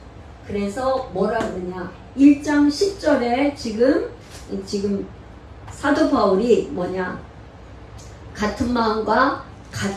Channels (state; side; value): identical; both; correlation 1.00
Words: 그래서 뭐라 그러냐? 1장 10절에 지금 사도 바울이 뭐냐? 같은 마음과